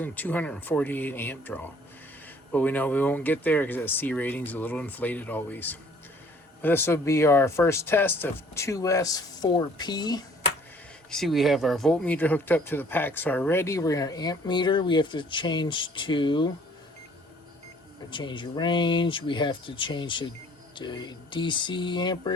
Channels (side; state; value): both; normal; correlation 0.56